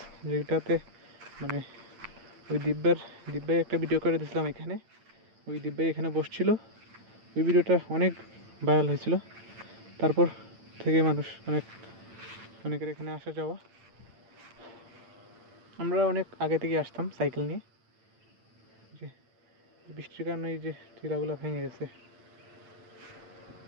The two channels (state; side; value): late; left; 8.9 ms